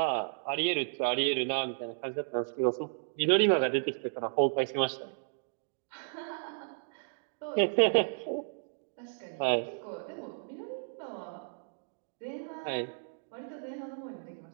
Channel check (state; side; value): silent; left; digital silence